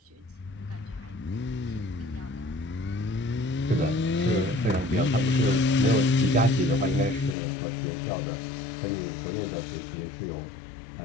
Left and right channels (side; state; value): right; drops out; at 7.4 s